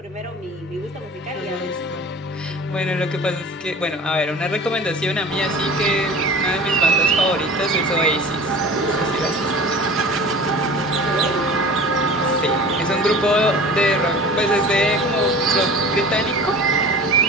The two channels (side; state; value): both; normal; correlation 0.39